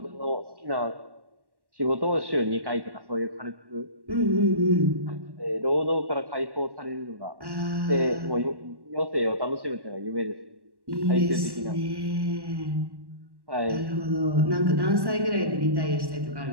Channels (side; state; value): left; late; 1.1 ms